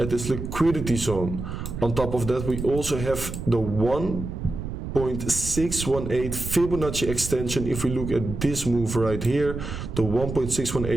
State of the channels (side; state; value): right; noise; rumble, 7 dB below the sound